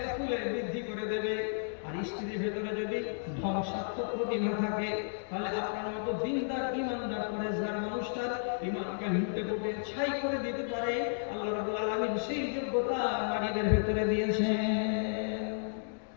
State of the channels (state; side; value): silent; right; digital silence